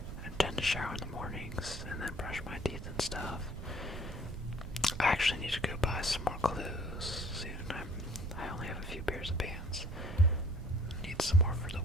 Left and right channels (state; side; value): noise; right; rumble, 9 dB below the sound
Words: tend to shower in the mornings and then brush my teeth and stuff. I actually need to go buy some more clothes soon. I only have a few pairs of pants. Need some more for the